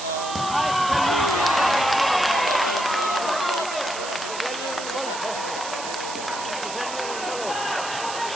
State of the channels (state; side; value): noise; right; hiss, 9 dB below the sound